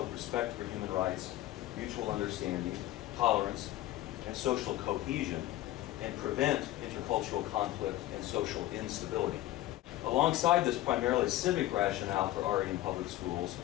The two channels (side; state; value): right; quieter; 15.2 dB